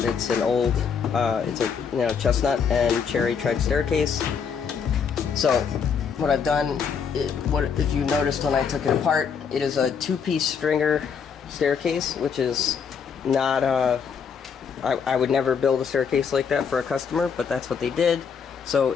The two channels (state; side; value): quieter; right; 6.5 dB